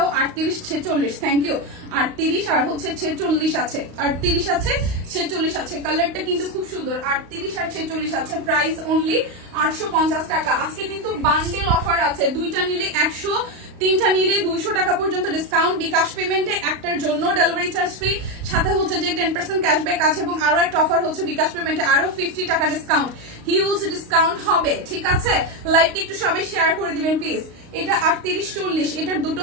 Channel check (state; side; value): late; left; 35 ms